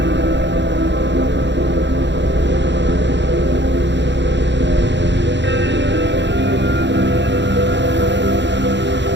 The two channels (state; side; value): late; left; 0.52 ms